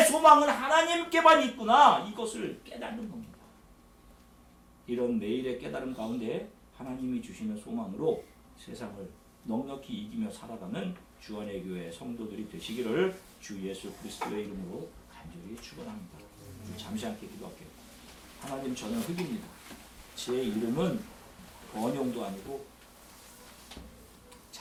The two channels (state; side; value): identical; both; correlation 1.00